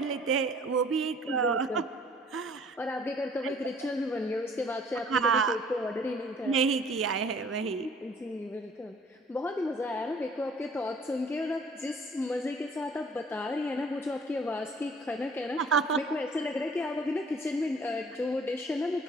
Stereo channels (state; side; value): normal; both; correlation 0.54